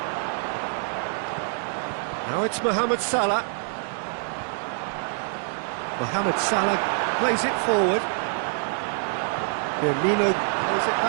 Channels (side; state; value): left; silent; 61 dB below the other